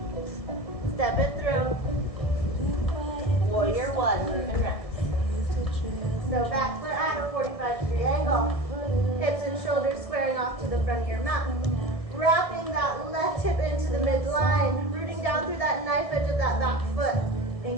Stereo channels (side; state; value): right; late; 1.7 ms